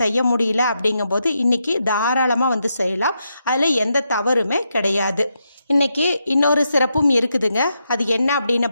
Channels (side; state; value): both; inverted; correlation -0.83